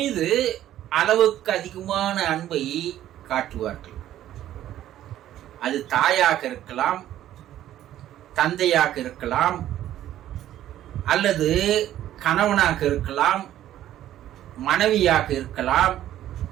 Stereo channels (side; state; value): left; quieter; 12.5 dB